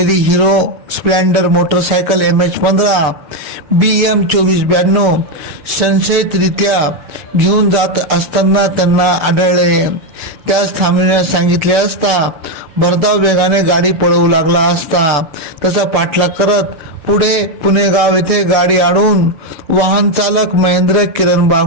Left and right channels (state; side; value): late; left; 6.9 ms